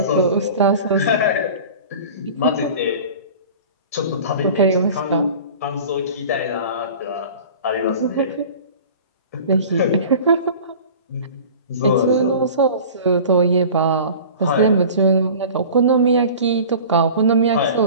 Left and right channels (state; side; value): inverted; both; correlation -0.40